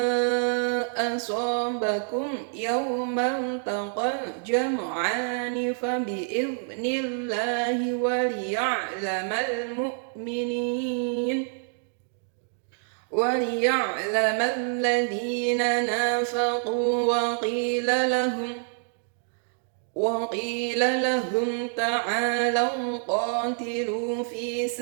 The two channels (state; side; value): silent; left; 60 dB below the other